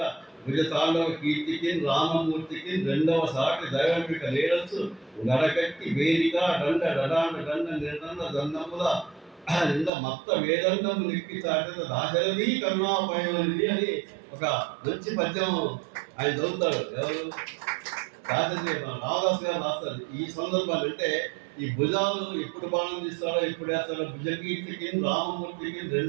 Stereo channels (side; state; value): left; drops out; at 9.9 s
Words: విజతాండవ కీర్తికి రామమూర్తికి 2వ సాటి దైవంపిక లేడచ్చు గడకట్టి వేదిక దండ డడాండ దండ నిర్దండ దండముల నింద మత్త వేదండము నిక్కి చాటిన దాశరథి కరుణాపయోనిధి అని ఒక మంచి పద్యం ఆయన చదువుతాడు. ఎవరు? దాశరథి రామదాస్ గారు రాస్తారు. ఈ సందర్భాలు అంటే ఈ భుజాలు ఎప్పుడు బాణం తీస్తాడో ఎప్పుడు వేస్తాడో, భుజకీర్తికి రామమూర్తికి